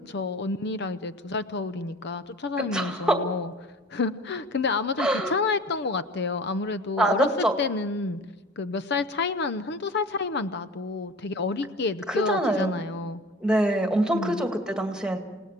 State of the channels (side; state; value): both; normal; correlation 0.41